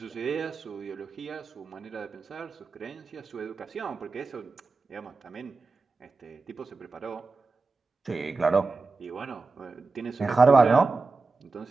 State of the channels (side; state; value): left; quieter; 3.9 dB